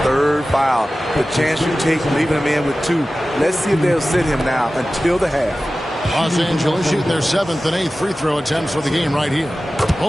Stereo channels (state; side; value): normal; both; correlation 0.96